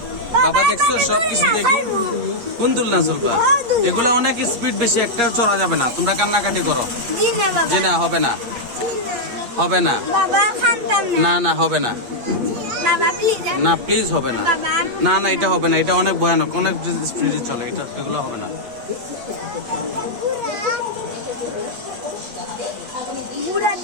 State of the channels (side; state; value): left; late; 8.4 ms